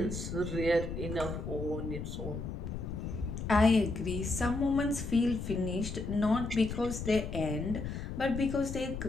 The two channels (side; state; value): left; noise; rumble, 6 dB below the sound